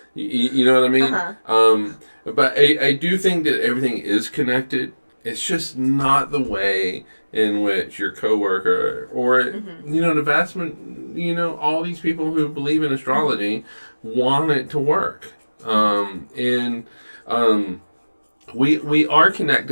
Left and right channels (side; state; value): both; inverted; correlation -1.00